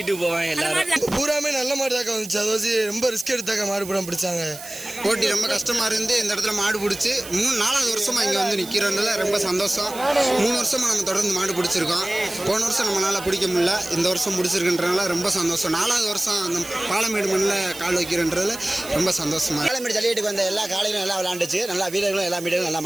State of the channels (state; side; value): noise; right; hiss, 13 dB below the sound